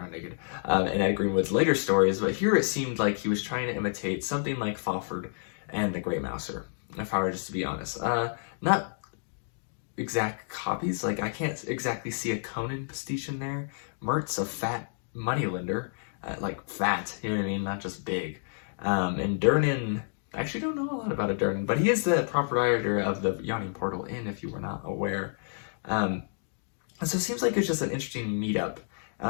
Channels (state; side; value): silent; right; digital silence